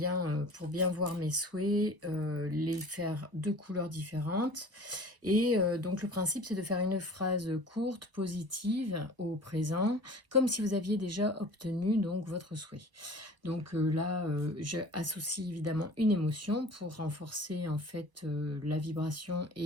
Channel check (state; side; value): late; left; 1.0 ms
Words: pour bien voir mes souhaits, les faire de couleurs différentes. Et donc le principe c'est de faire une phrase courte, positive au présent, comme si vous aviez déjà obtenu donc votre souhait. Donc là, j'associe évidemment une émotion pour renforcer en fait la vibration